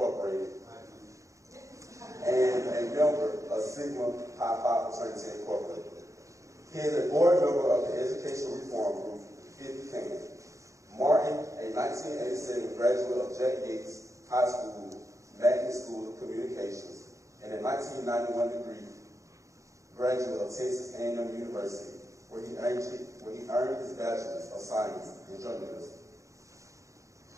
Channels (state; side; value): late; left; 0.15 ms